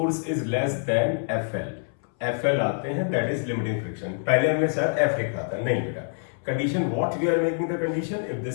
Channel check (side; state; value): right; silent; 61 dB below the other